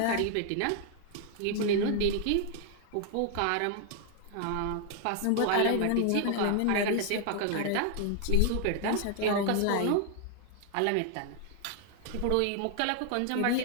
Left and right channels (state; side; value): different; both; correlation 0.00